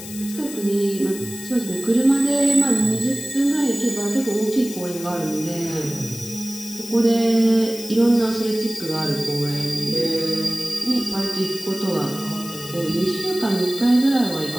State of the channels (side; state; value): left; noise; hiss, 13 dB below the sound